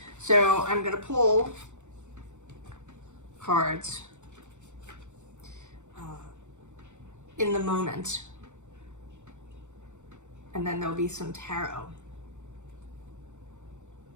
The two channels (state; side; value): late; left; 0.84 ms